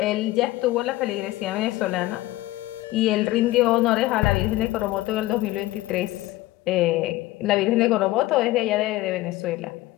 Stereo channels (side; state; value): right; quieter; 17.5 dB